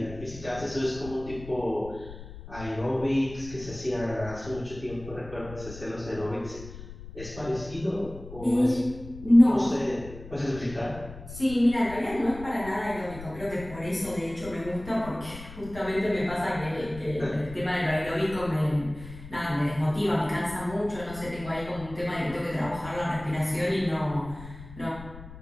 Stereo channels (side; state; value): left; noise; rumble, 14 dB below the sound